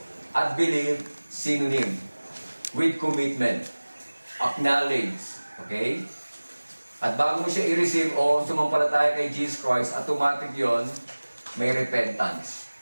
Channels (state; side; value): inverted; both; correlation -1.00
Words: at believe, synonym. With commitment. Acknowledge. Okay? At bago mo siya i-receive o sumampalataya kay Jesus Christ, automatic yon may repentance.